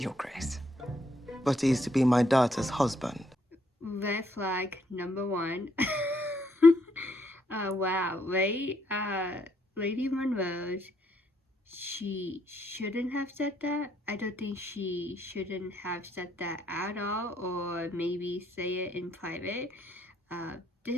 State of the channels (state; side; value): normal; both; correlation 0.72